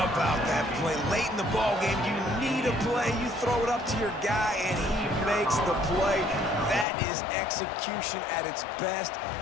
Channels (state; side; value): drops out; right; at 6.9 s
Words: about that play? Late in the ball game, you need a play. You throw it up to your guy, and he makes the play. That is execution at its best